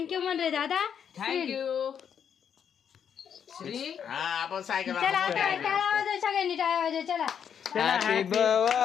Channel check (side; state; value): right; quieter; 8.1 dB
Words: म्हण रे दादा. थँक्यू. हा आपण सायकल चला आता टाळा वाजव सगळ्यांनी टाळा वाजव. चला happy